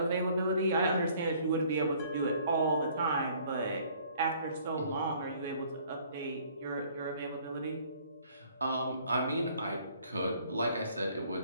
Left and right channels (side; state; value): both; inverted; correlation -0.58